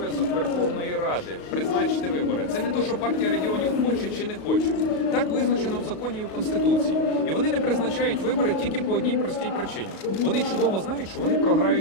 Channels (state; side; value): late; right; 35 ms